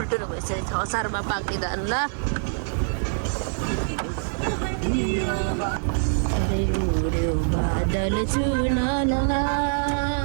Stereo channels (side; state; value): left; silent; digital silence